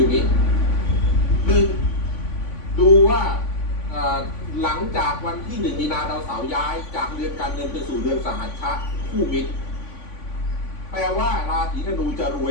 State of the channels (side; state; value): right; late; 3.5 ms